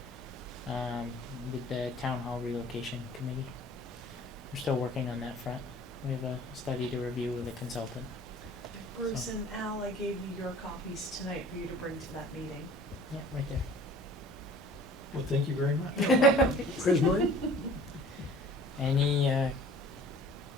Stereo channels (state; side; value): normal; both; correlation 0.48